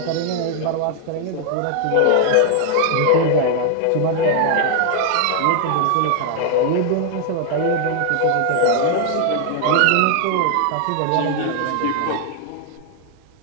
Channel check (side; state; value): both; different; correlation 0.00